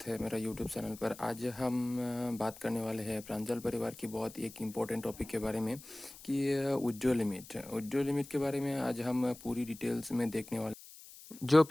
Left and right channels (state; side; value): noise; left; hiss, 18 dB below the sound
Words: है मेरा यूट्यूब चैनल पर। आज हम बात करने वाले हैं प्रांजल परिवार की बहुत एक इम्पोर्टेंट टॉपिक के बारे में कि विड्रॉ लिमिट के बारे में आज हम पूरी डिटेल्स में देखने वाले। जो